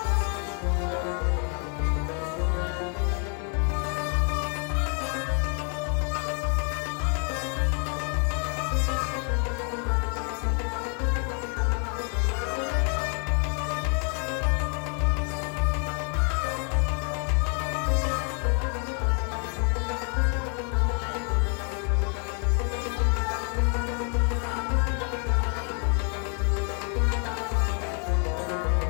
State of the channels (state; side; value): quieter; right; 39.3 dB